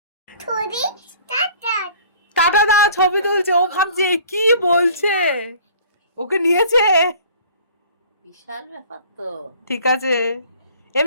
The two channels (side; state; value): both; inverted; correlation -0.50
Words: টাটা দা, ছবি তুলছে। ও ভাবছে কি বলছে, ওকে নিয়েছে। বিশাল ব্যাপার তো। ঠিক আছে,